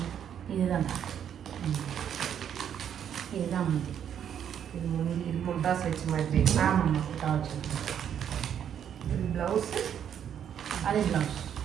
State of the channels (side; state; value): left; quieter; 9.1 dB